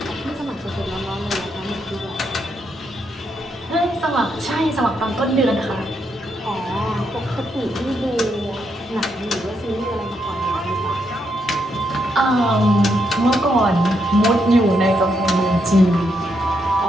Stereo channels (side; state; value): both; normal; correlation 0.79